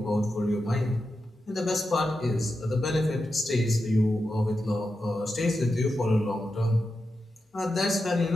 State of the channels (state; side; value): normal; both; correlation 0.89